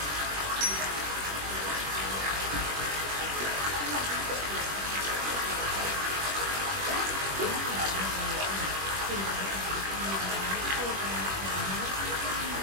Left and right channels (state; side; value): late; left; 21 ms